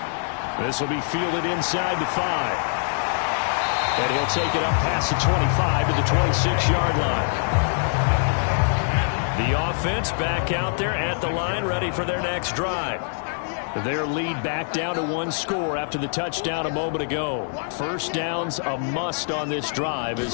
This will be fielded inside the 5. And he'll take it up past the 25 to the 26-yard line. The offense back out there at the line, ready for their next drive. Their lead back down to 1 score after the touchdown a moment ago. First down's a must on this drive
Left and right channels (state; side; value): silent; right; 63 dB below the other